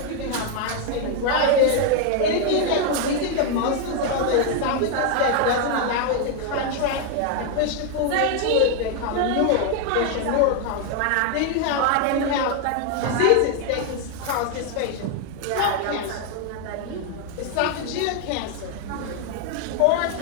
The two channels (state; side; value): different; both; correlation 0.01